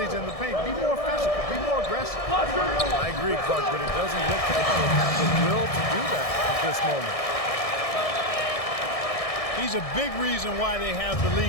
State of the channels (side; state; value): right; late; 1.6 ms